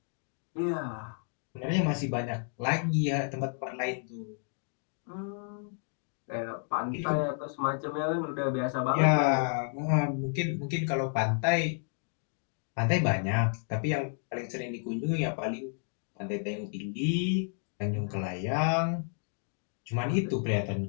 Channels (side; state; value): right; silent; 57 dB below the other